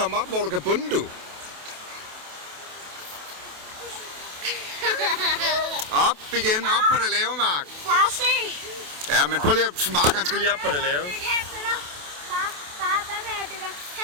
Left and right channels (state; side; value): late; left; 28 ms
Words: op, hvor du kan bunde, du? Op igen, op på det lave, Mark. Far, se. Ja, men prøv lige at... Mark, han skal lige op på det lave. Far, hvad med at du kan